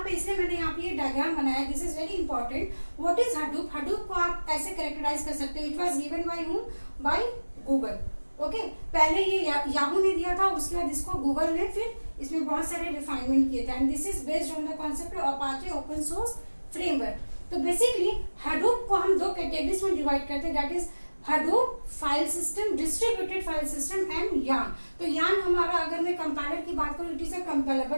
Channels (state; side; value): inverted; both; correlation -1.00